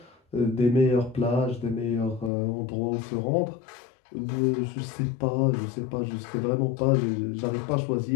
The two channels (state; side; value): drops out; right; at 2.3 s